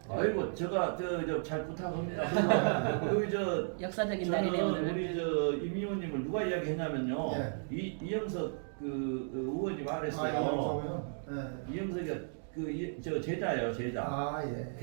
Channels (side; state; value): left; silent; digital silence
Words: 아이고 제가 잘 부탁합니다. 그 역사적인 날이네요 오늘. 우리 임 의원님을 누가 이야기했냐면요. 네. 이영석 그 의원이 말했어요. 이영석이요? 네. 이영석이 저 제자예요 제자. 아 예.